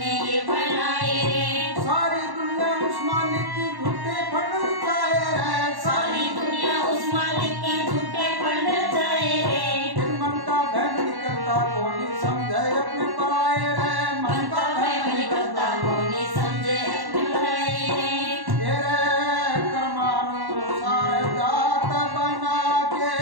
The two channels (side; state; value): left; late; 1.1 ms